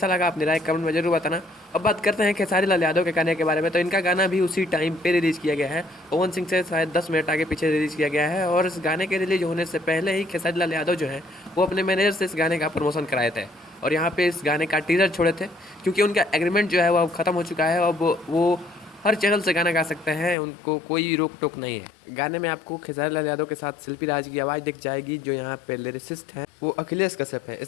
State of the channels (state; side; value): drops out; right; at 20.4 s